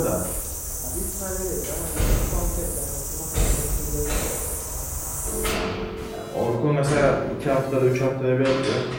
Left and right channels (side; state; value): both; identical; correlation 1.00